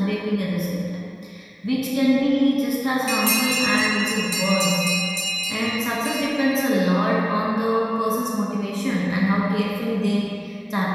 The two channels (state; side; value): identical; both; correlation 1.00